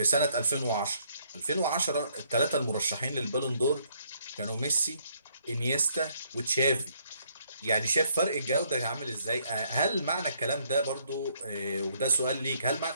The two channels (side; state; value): both; inverted; correlation -0.68